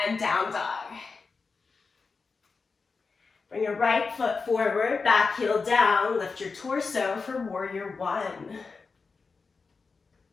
and down dog. Bring your right foot forward, back heel down, lift your torso for Warrior One.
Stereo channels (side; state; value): right; quieter; 4.6 dB